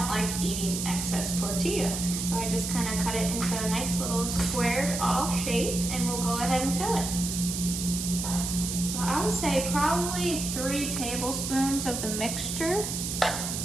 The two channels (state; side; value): noise; right; hiss, 4 dB below the sound